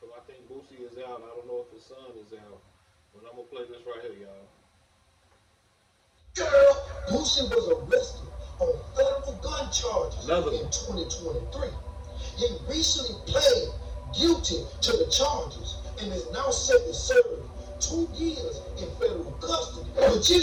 think Boosie is out. I don't know if his son is out. But I'm gonna play this right here, y'all. Girl, Boosie was arrested on federal gun charges in 2023. He recently pled guilty to the charges and is now set to serve 2 years in federal custody. But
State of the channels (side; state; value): both; identical; correlation 1.00